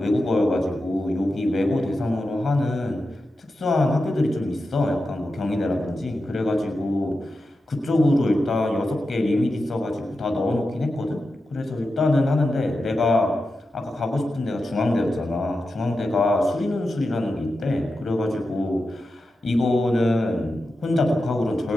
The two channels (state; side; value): normal; both; correlation 0.90